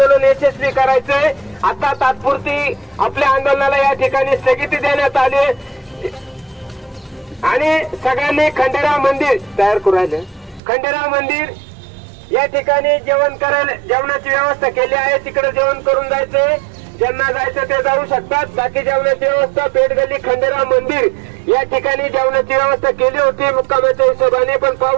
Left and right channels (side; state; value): left; drops out; at 10.6 s